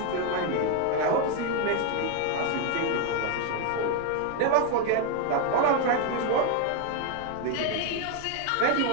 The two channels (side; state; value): both; different; correlation 0.01